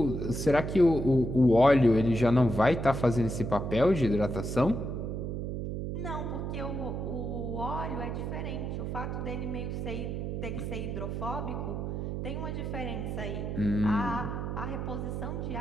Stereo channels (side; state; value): right; noise; hum, 3 dB below the sound